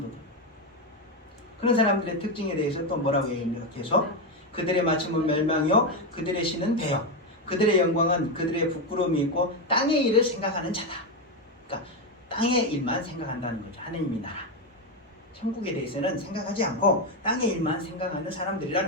그런 사람들의 특징에 대해서 또 뭐라고 얘기합니까? 계속 그들의 마침은 멸망이요 그들의 신은 배요 그들의 영광은 그들의 부끄러움이 있고 땅의 일을 생각하는 자다. 그러니까 땅의 일만 생각한다는 거죠. 하느님의 나라 천국에 대해서는 생각하지 않고 땅의 일만 생각하는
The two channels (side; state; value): both; normal; correlation 0.09